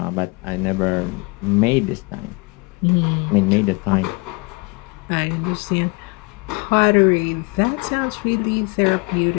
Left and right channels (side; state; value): right; quieter; 29.1 dB